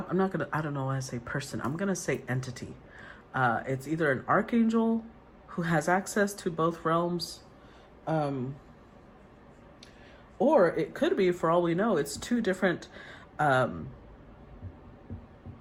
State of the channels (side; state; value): both; identical; correlation 1.00